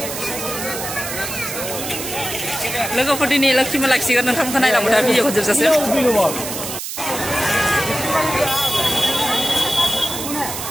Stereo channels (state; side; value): noise; right; hiss, 6 dB below the sound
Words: लोगोफोर दिनै लोक्षि मेला खिसिगोन नोंथांमोनखौ नायलांबाय था भिडिअखौ जोबजासिम